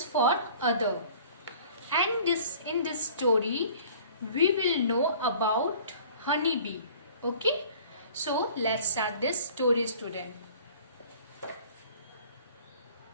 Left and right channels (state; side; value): inverted; both; correlation -0.49